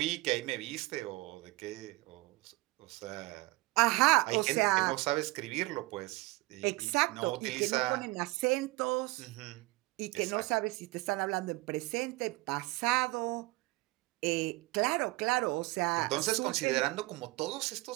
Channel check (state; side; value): quieter; left; 22.0 dB